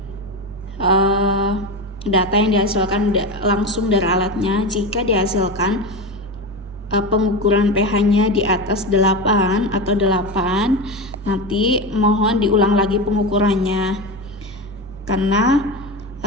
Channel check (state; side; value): normal; both; correlation 0.20